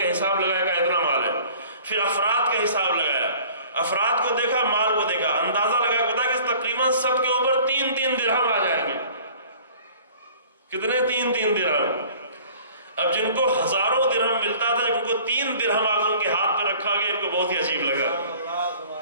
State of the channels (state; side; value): inverted; both; correlation -0.49